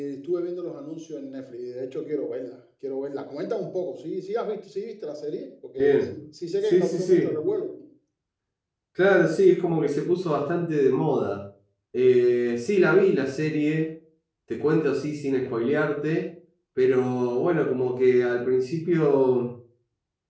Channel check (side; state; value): both; identical; correlation 1.00